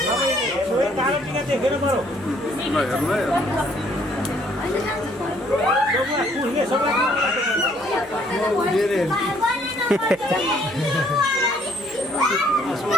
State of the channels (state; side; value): noise; left; hum, 29 dB below the sound